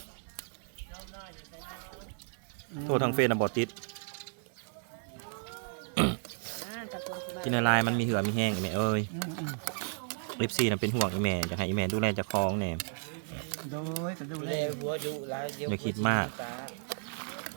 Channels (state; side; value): silent; left; 56 dB below the other